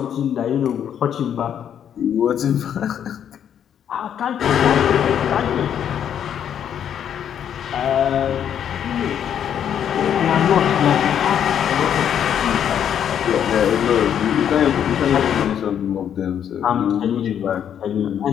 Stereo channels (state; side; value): quieter; right; 9.1 dB